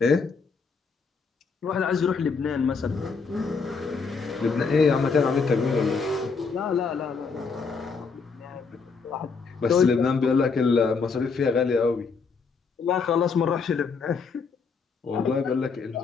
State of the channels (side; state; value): right; quieter; 5.0 dB